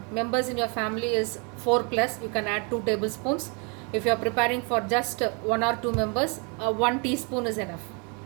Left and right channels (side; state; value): left; quieter; 34.3 dB